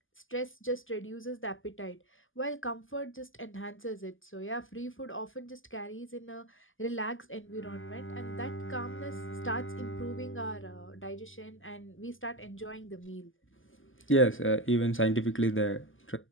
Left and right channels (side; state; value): right; late; 0.58 ms